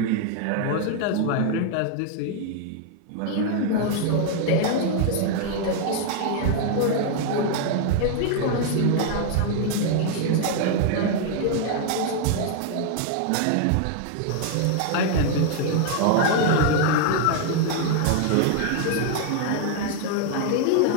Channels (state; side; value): different; both; correlation 0.00